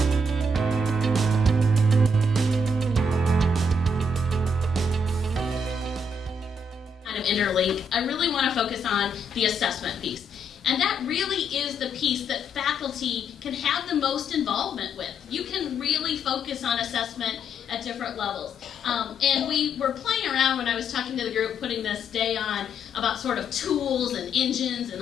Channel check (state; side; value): normal; both; correlation 0.74